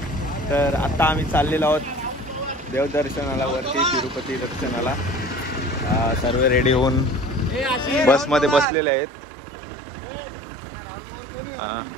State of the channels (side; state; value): left; drops out; at 8.7 s